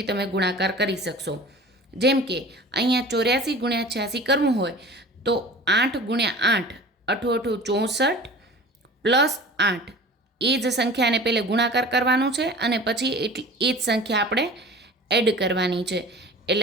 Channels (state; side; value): normal; both; correlation 0.40